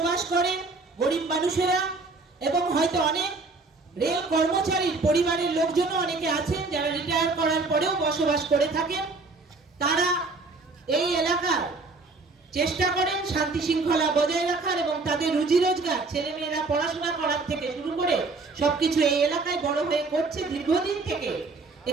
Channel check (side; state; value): left; quieter; 3.7 dB